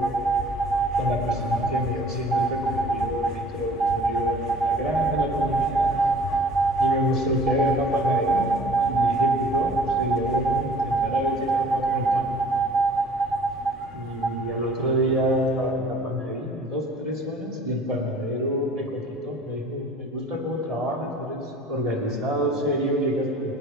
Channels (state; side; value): normal; both; correlation 0.50